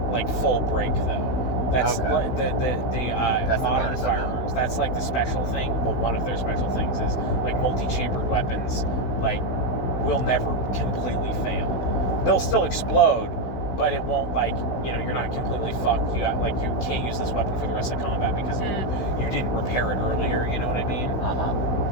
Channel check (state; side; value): late; right; 16 ms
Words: like full break though. That's Okay. the the modern bonus of them. firearms. That's like the special thing. Well, one of their special things is like multi-chambered weapons, like will never completely fail. They'll still explode, but it won't, like, you know, you're not completely fucked. You got, like, you can't use this weapon for the rest of combat because you didn't repair it earlier, you know what I mean?